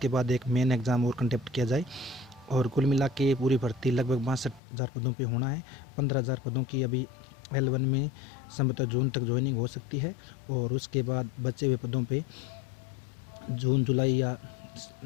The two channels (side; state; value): right; drops out; at 4.6 s